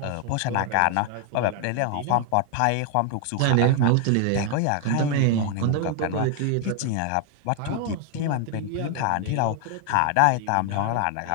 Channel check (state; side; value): different; both; correlation 0.00